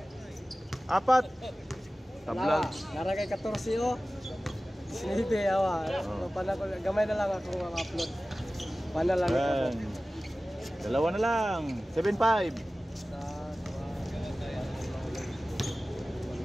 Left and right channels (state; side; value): normal; both; correlation 0.96